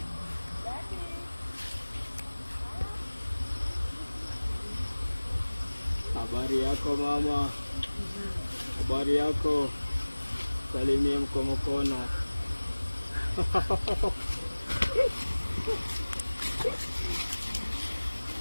Habari yako mama, habari yako, salimia mkono.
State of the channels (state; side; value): inverted; both; correlation -1.00